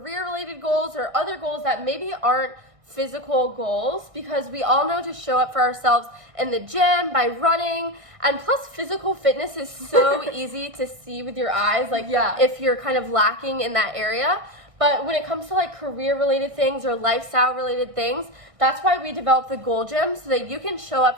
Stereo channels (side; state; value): left; late; 1.6 ms